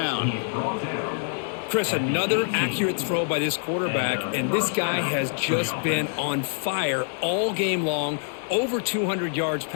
Chris, another accurate throw by this quarterback, and this guy has just been on fire all game long, over 200 yards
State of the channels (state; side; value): silent; right; digital silence